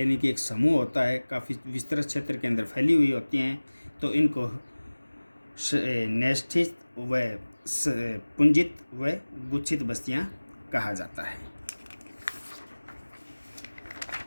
कि एक समूह होता है, काफ़ी विस्तृत क्षेत्र के अंदर फैली हुई होती हैं। तो इनको न्यस्थित व पुंजित व गुच्छित बस्तियां कहा जाता है।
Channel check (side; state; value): both; inverted; correlation -1.00